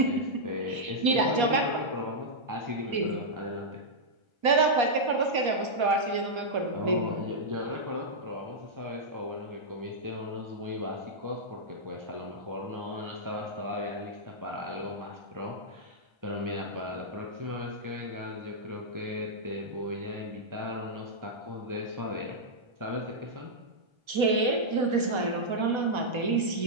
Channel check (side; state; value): left; late; 1.3 ms